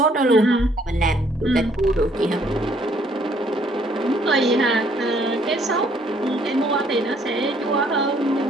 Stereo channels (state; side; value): normal; both; correlation 0.64